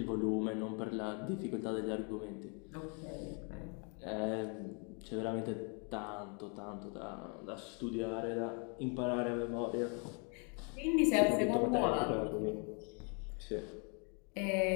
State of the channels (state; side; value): quieter; right; 36.5 dB